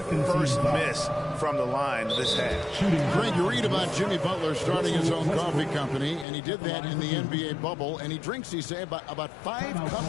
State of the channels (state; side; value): drops out; right; at 6.2 s